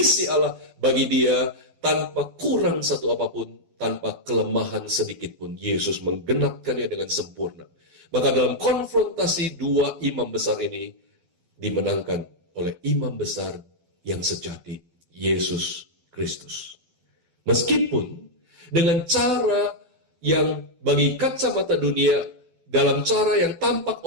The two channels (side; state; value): left; late; 12 ms